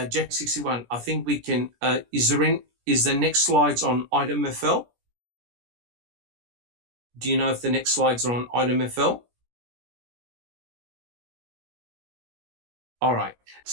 61, I think we can, is the next slides on item FL? Do you know if the next slides are on item FL? All right,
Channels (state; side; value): late; left; 17 ms